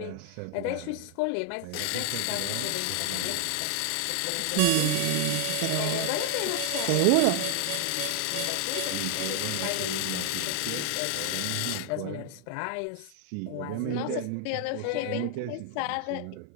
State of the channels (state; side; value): different; both; correlation 0.00